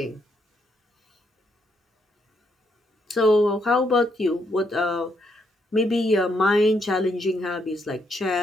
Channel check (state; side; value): normal; both; correlation 0.76